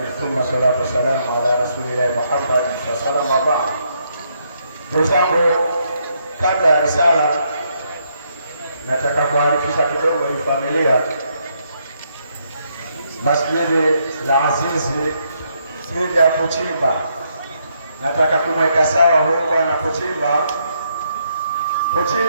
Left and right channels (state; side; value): inverted; both; correlation -0.75